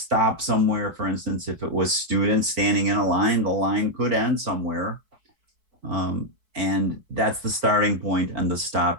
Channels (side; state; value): left; late; 4.6 ms